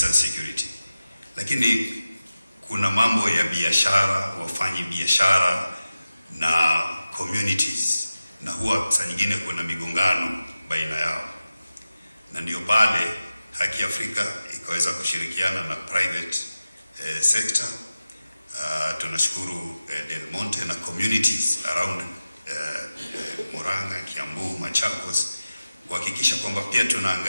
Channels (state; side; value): inverted; both; correlation -0.95